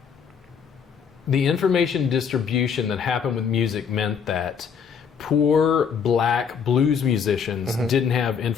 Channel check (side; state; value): right; quieter; 6.8 dB